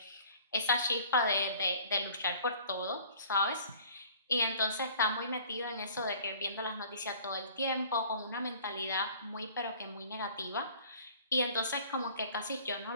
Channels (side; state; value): both; inverted; correlation -0.50